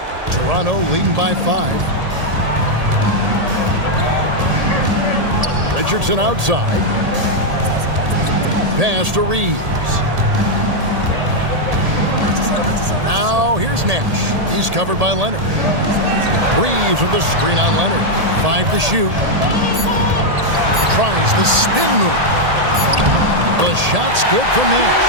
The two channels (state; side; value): late; left; 1.8 ms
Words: Toronto leading by 5. Richardson outside. Pass to Reeves. Now here's Nash. He's covered by Leonard. Reeves with the screen on Leonard. 5 to shoot. Tries the spin move. The shot's good from Nash.